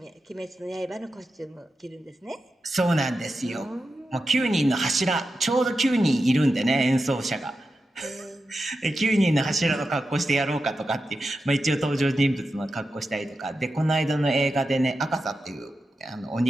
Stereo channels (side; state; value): both; normal; correlation 0.90